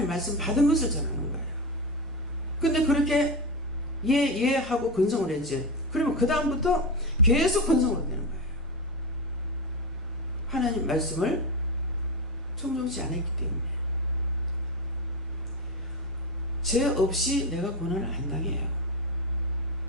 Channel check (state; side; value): normal; both; correlation 0.17